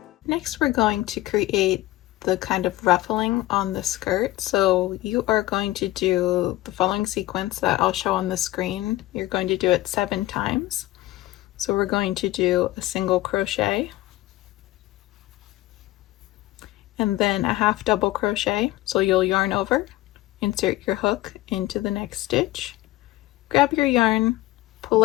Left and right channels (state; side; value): quieter; right; 17.2 dB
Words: Next, we're going to create the kind of ruffling on the skirt. So you are going to do the following sequence that I'll show on the screen. You're going to do it 7 times. So we're going to do a single crochet, and then a half double crochet. So you'll yarn over, insert your hook into the next stitch, grab your yarn, pull